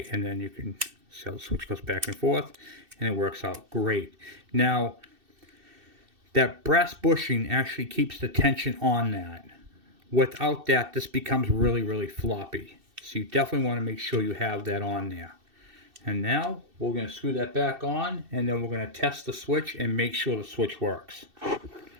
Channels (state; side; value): late; left; 2.7 ms